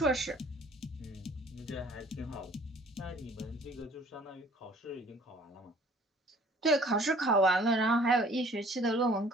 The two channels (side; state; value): both; normal; correlation 0.54